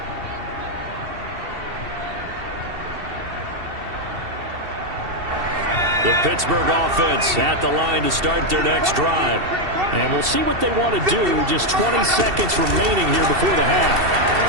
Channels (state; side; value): late; left; 2.7 ms